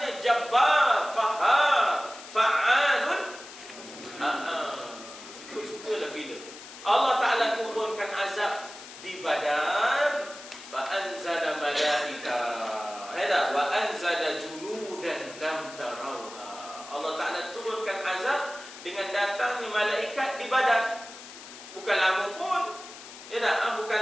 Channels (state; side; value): noise; left; hiss, 15 dB below the sound